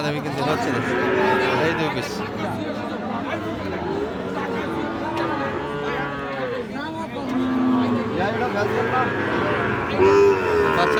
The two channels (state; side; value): identical; both; correlation 1.00